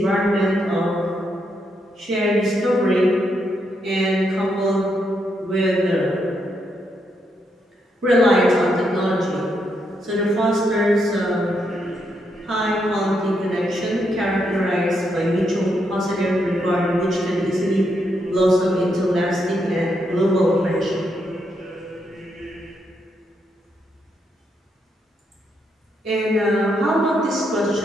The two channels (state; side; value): normal; both; correlation 0.79